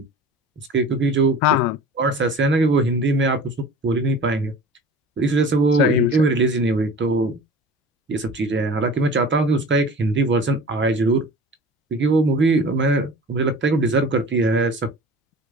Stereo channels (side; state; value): both; normal; correlation 0.40